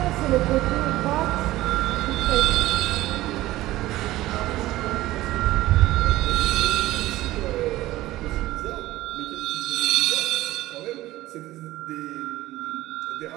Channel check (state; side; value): quieter; left; 16.7 dB